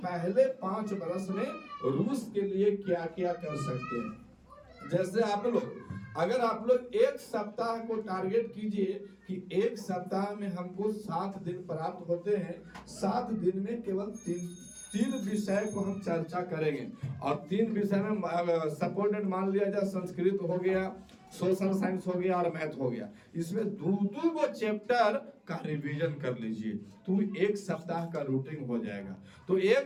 पहले 5 वर्ष में रूस के लिए क्या क्या कर सकते हैं। जैसे अगर आप लोग एक सप्ताह को टारगेट कीजिए कि एक सप्ताह में हमको 7 दिन प्राप्त होते हैं, 7 दिन में केवल 3 विषय को हम चर्चा करेंगे। और 3 विषय में सपोर्टेड मान लिया जाए, संस्कृत हो गया, सोशल साइंस हो गया और मैथ हो गया। इसमें 2-2 गो चैप्टर का रिवीजन कर लीजिए तो एक सप्ताह का रूटीन हो जाएगा। तो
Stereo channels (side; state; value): both; identical; correlation 1.00